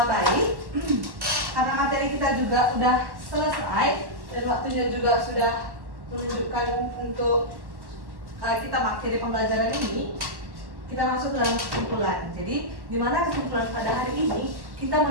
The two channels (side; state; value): left; late; 1.1 ms